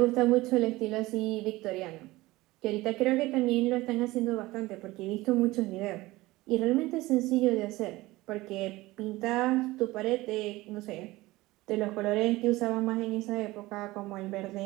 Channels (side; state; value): left; quieter; 19.4 dB